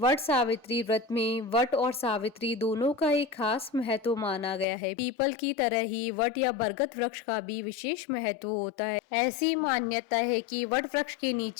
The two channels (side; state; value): right; drops out; at 4.7 s